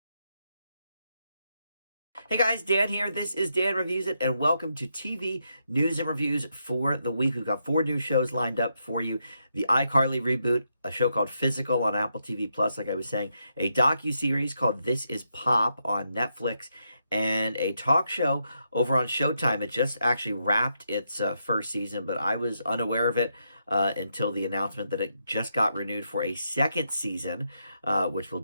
Hey guys, Dan here. This is Dan Reviews It, and welcome to TV News and Reviews for the week. We've got four new shows lined up for you. The iCarly reboot, a show called Physical on Apple TV Plus, like I was saying, a docu-series called This Is Pop on Netflix, and a talk show over on Showtime. It just actually wrapped its first season, but I was unaware of it until the announcement that it just got renewed for a second season, which will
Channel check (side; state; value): both; inverted; correlation -0.81